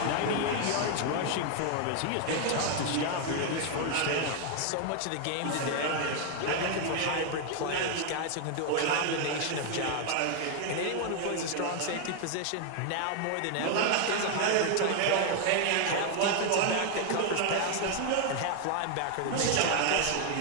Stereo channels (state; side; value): different; both; correlation 0.01